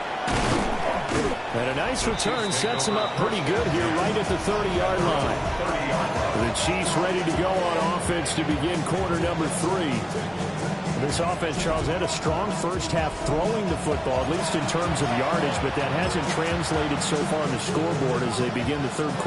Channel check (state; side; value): identical; both; correlation 1.00